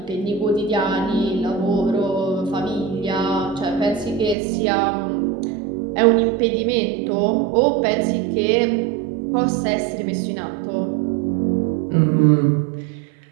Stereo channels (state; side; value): drops out; left; at 4.4 s